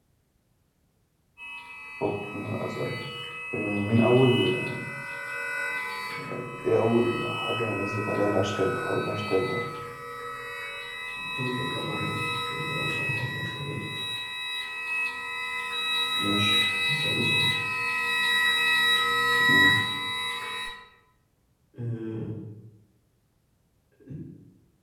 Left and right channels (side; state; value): both; identical; correlation 1.00